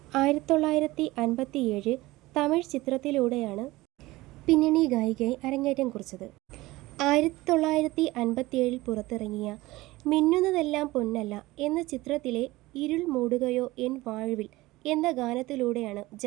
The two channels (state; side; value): quieter; left; 19.4 dB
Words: 1957 തമിഴ് ചിത്രത്തിലൂടെയാണ് പിന്നണി ഗായികയായി അരങ്ങേറ്റം കുറിച്ചത്. 1957 പുറത്തിറങ്ങിയ മിന്നുന്നതെല്ലാം പൊന്നല്ല എന്ന ചിത്രത്തിലെ ഇരുൾ മൂടുകയോ എൻ വാഴ്വിൽ എന്ന ഗാനത്തിലൂടെയാണ്